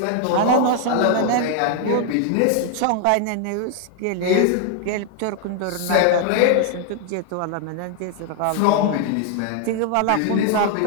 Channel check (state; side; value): different; both; correlation 0.00